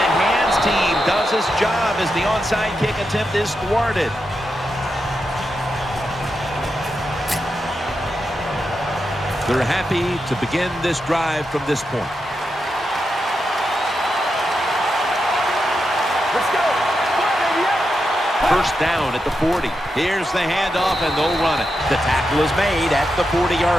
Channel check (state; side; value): normal; both; correlation 0.87